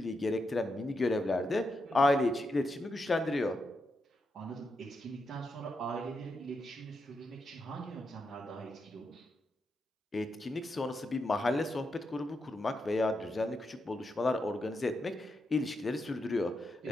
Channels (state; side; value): normal; both; correlation 0.84